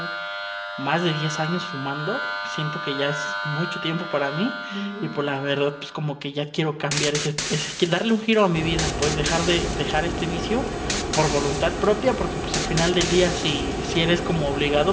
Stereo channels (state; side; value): identical; both; correlation 1.00